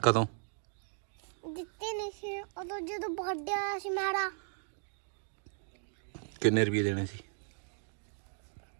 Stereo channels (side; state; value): left; silent; digital silence